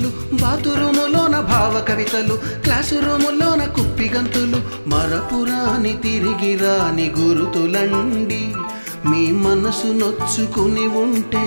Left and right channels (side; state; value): both; inverted; correlation -1.00